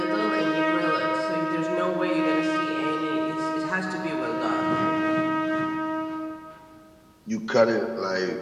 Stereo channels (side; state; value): both; identical; correlation 1.00